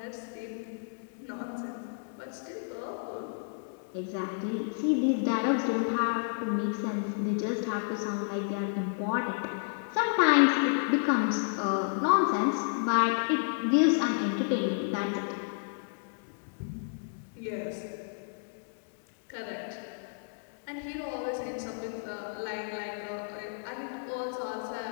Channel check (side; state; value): right; silent; digital silence